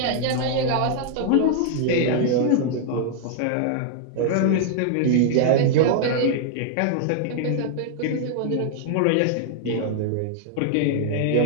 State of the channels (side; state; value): both; different; correlation 0.00